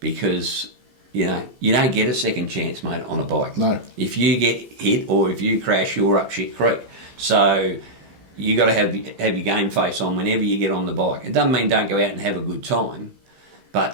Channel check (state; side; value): late; left; 15 ms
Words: because, you don't get a second chance, mate, on a bike. No. If you get hit or if you crash, you're up shit creek. So you got to have your game face on whenever you get on the bike. It doesn't mean don't go out and have a good time, but